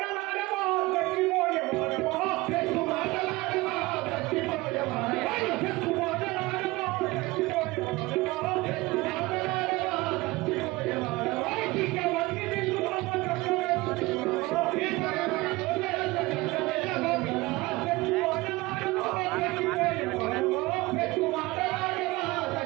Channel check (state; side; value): quieter; left; 21.4 dB